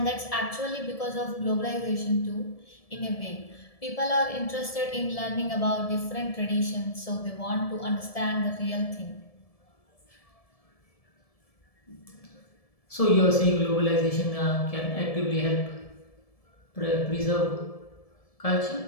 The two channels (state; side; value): late; right; 1.7 ms